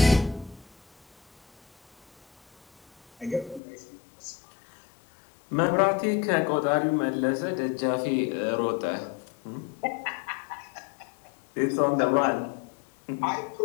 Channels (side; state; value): right; drops out; at 3.6 s